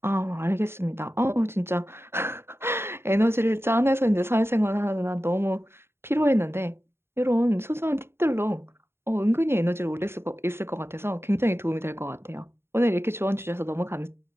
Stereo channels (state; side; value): late; left; 0.12 ms